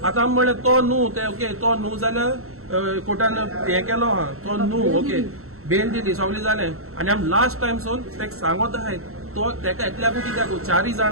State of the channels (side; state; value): left; late; 0.63 ms